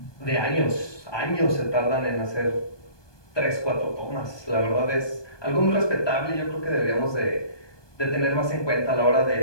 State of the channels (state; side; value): late; right; 1.2 ms